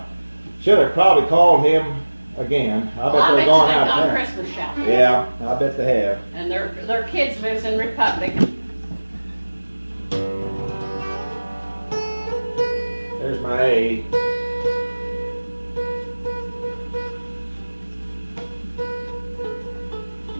should have probably called him again. I bet they're going out of town. Christmas shopping. Yeah, I bet they have. And their kids lives in Republic. There's my A.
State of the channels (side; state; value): both; inverted; correlation -1.00